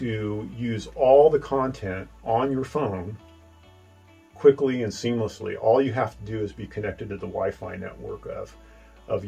use all the content on your phone quickly and seamlessly. All you have to do is be connected to the Wi-Fi network of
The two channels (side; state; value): both; identical; correlation 1.00